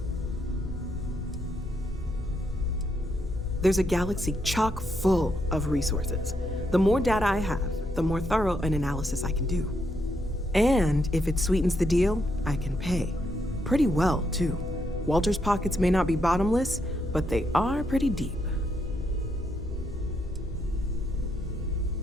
There's a galaxy chock full of resources. The more data I have, the more thorough an analysis I can do. And if it sweetens the deal, I can pay. Pretty well, too. Walter's pockets may not be bottomless, but they are pretty deep.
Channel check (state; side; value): normal; both; correlation 0.78